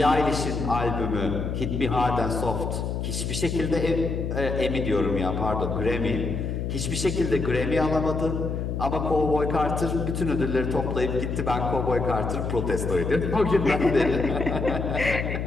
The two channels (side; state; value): left; noise; hum, 3 dB below the sound